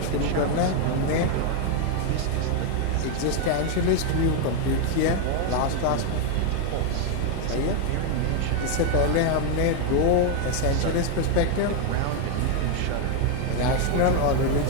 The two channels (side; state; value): both; different; correlation 0.01